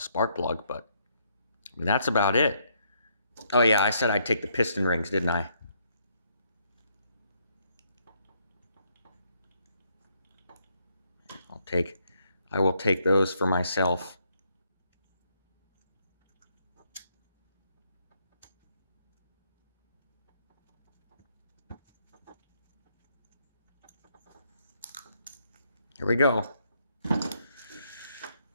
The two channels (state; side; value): inverted; both; correlation -0.73